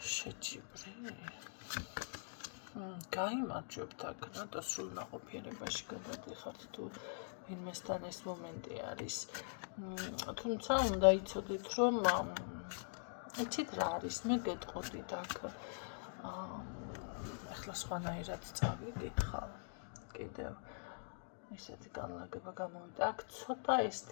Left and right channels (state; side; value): silent; right; digital silence